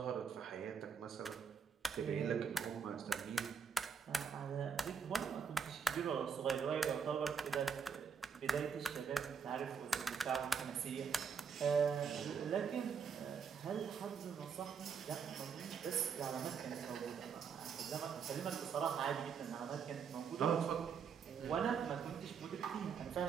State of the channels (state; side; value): quieter; left; 6.6 dB